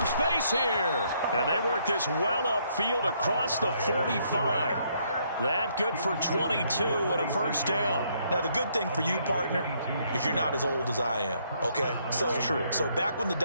space here. And they work this well upfield across the 45. That good for 22 and a first down. Now, the good thing for you, partner, is you're not as old as I am, okay? So, true. So back when the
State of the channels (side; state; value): both; inverted; correlation -0.70